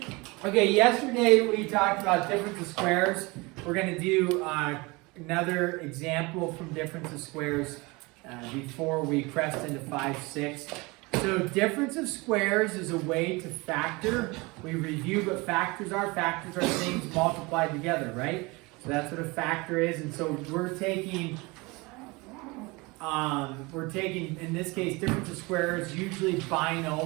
Okay. Yesterday we talked about difference of squares. We're going to do another example from difference of squares before we crest into 5-6. So difference of squares is a way to factor. We reviewed what factors are. Factors are things multiplied together, right? So that's what a factor is. And so we're taking in this case difference of squares, usually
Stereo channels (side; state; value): left; quieter; 25.1 dB